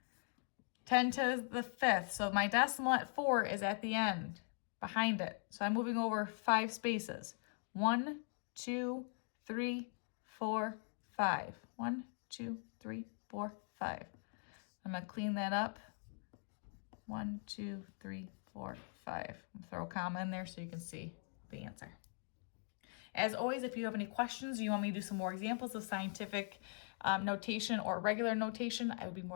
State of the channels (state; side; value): silent; right; 50 dB below the other